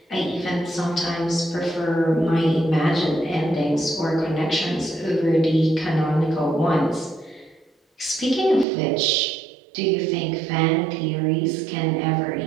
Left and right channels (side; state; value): left; drops out; at 8.7 s